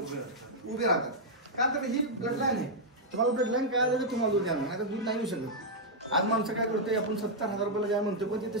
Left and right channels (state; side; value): normal; both; correlation -0.04